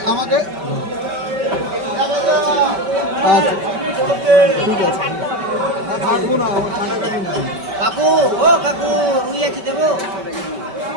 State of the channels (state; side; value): late; left; 5.2 ms